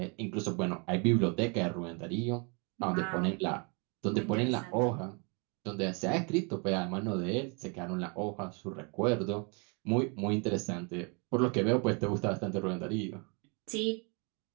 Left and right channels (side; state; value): left; quieter; 33.6 dB